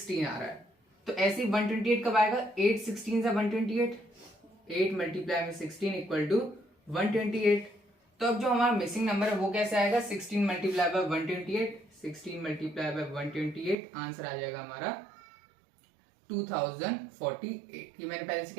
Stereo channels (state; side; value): drops out; left; at 13.8 s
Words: आ रहा है। तो ऐसे ही 128 कब आएगा, 8 16 जा 128, 8 × 16 = 128। तो अब जो हमारा मिसिंग नंबर है वो कैसे आएगा, 16 × 128, 16 × 128 आंसर आ जाएगा हमारा 2048। ये मैंने पहले से